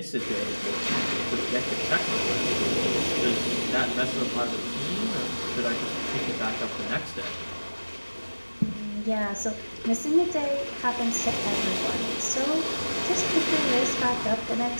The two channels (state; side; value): inverted; both; correlation -1.00